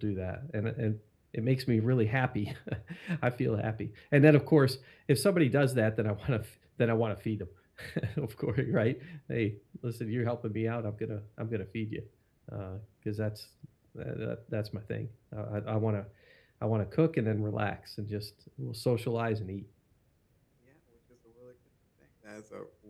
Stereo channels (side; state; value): both; identical; correlation 1.00